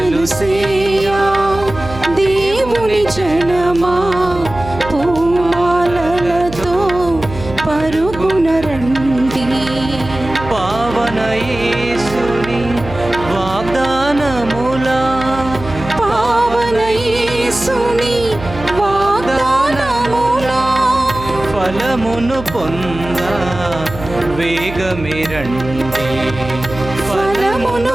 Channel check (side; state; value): right; noise; hum, 12 dB below the sound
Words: సేయా దేవుని జనమా పూమాలలతో పరుగున రండి. పావన యేసుని వాగ్దానములా, పావన యేసుని ఫలమును పొంద వేగమే రండి, ఫలమును